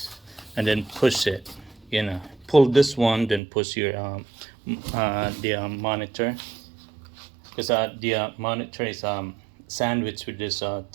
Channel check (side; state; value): left; drops out; at 3.4 s